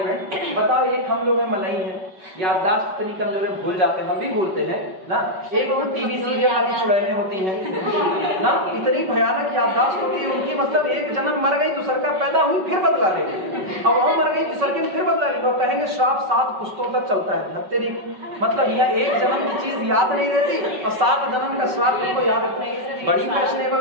बताओ, एक हम लोग में मलाई है, याददाश्त इतनी कमजोर है, भूल जाते हैं, हम भी भूलते हैं ना। एक वो टीवी सीरियल वाली चुड़ैलें होती हैं ना, इतनी भयानक याददाश्त होती है उनकी, मतलब एक जन्म मर गई, दूसर का पैदा हुई, फिर बदला लेंगे, और वहां मर गई, दूसर के फिर बदला लेंगे, और कहेंगे श्राप 7 पुश्तों तक चलता है। तेरी मतलब यह एक जन्म की चीज याद नहीं रहती और 7 जन्म का श्राप तुमको याद रखना है। बड़ी फैशनेबल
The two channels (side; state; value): left; late; 5.3 ms